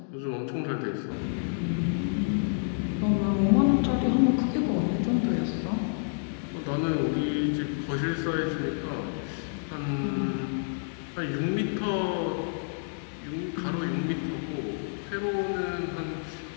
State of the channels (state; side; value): silent; right; digital silence